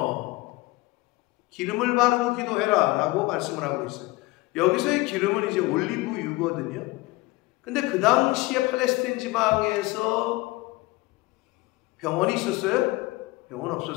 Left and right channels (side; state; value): right; quieter; 21.3 dB